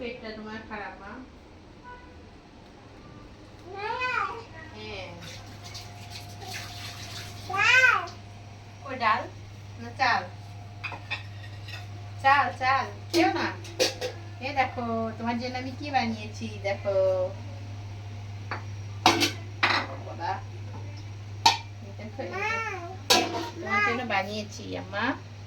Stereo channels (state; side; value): identical; both; correlation 1.00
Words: তোমার খারাপ মা। হ্যাঁ ওই ডাল না চাল? চাল চাল খেও না। এ দেখো তোমার জন্য আমি কি বানিয়েছি দেখো বাবা, দেখো তোমার জন্য বানিয়েছি আম্মা।